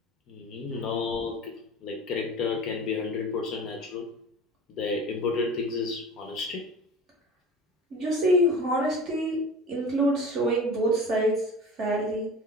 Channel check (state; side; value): normal; both; correlation 0.37